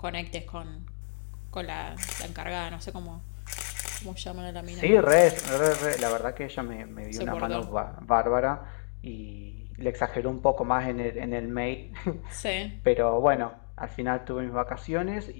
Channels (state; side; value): silent; right; digital silence